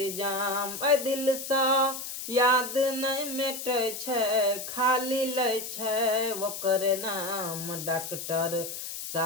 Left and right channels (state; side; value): noise; left; hiss, 7 dB below the sound